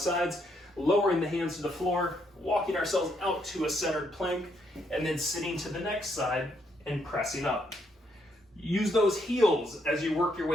sides, lowering the hands to the floor, walking ourselves out to a centered plank, and then sitting to the next side and pressing up. Use those heels as you work your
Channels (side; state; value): both; normal; correlation 0.74